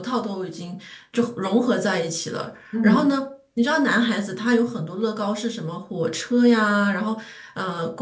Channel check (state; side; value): identical; both; correlation 1.00